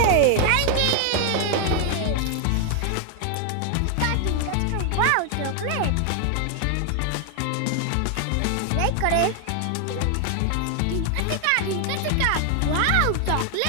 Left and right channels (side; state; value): both; different; correlation 0.00